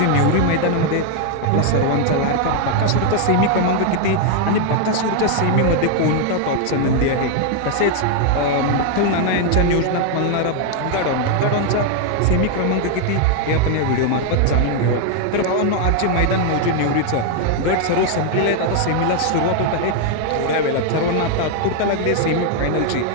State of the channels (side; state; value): both; different; correlation 0.00